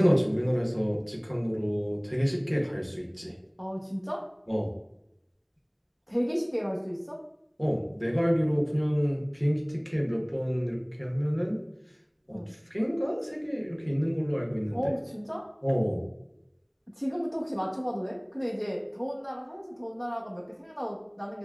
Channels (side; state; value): both; identical; correlation 1.00